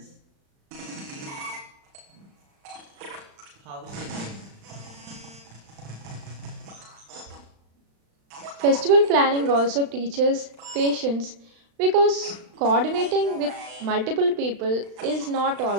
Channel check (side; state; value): left; late; 36 ms